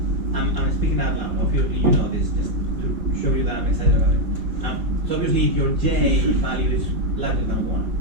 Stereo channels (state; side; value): late; left; 4.4 ms